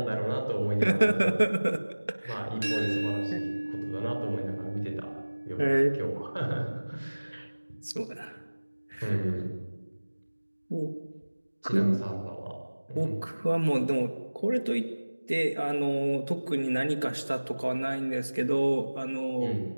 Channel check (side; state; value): both; inverted; correlation -1.00